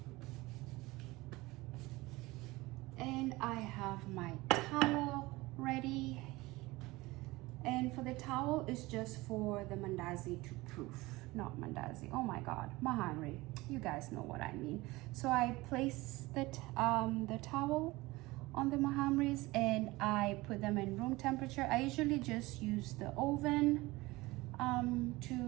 And I have my towel ready. And for the towel, it's just for the mandazi to proof, not mandazi. Oh my God, Mahamri, you guys know what I mean. So I place the towel on the Mahamris and I put them in room temperature. I usually just use the oven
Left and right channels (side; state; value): left; quieter; 20.8 dB